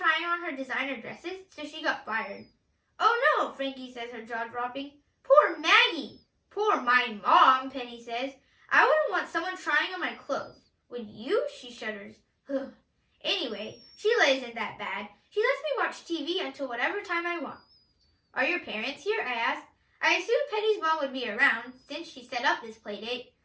on her designer dresses, so she got fired. Oh no, Frankie says, her jaw dropping. Poor Maggie. Poor my mom, Penny says. I wouldn't want someone trying on my clothes. Would you? She shudders. Anyway, Sheila isn't that bad. She lets me watch TV until whatever time I want. Are your parents here? I ask. I assumed Penny's mom would be around, since she set up this play date.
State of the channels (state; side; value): identical; both; correlation 1.00